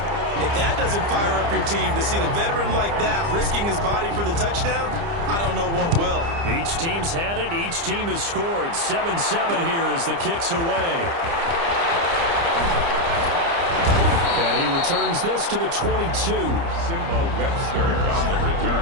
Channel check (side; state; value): left; late; 30 ms